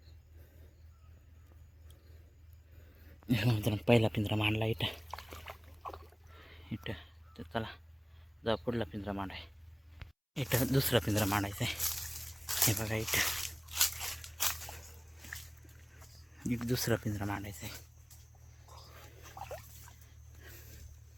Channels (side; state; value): both; identical; correlation 1.00